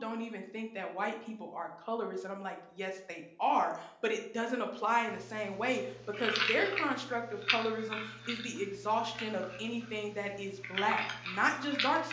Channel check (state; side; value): identical; both; correlation 1.00